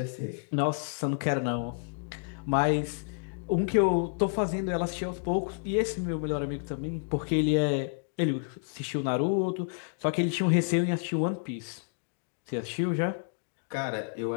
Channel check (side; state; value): right; silent; digital silence